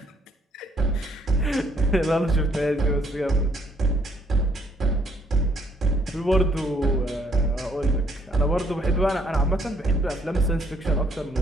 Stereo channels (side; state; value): both; normal; correlation 0.66